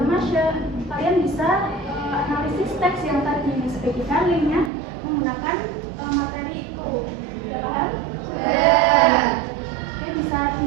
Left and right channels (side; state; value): left; drops out; at 4.7 s